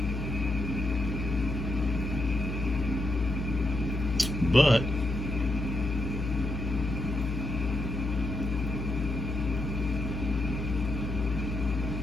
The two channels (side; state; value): left; noise; hum, 3 dB below the sound